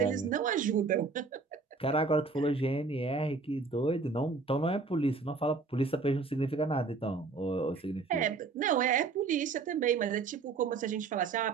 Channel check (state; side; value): quieter; left; 4.3 dB